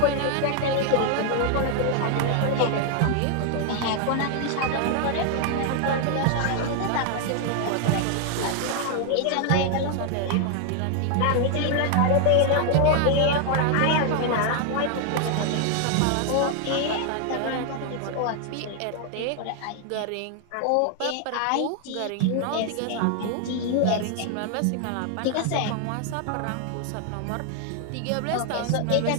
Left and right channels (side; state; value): both; different; correlation 0.00